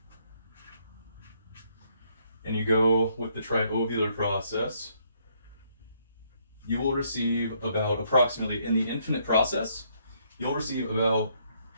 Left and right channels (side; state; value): both; inverted; correlation -0.70